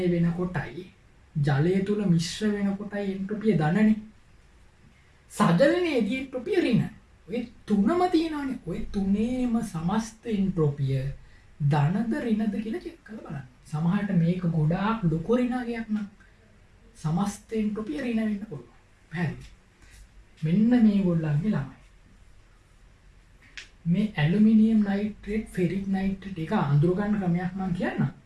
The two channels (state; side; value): identical; both; correlation 1.00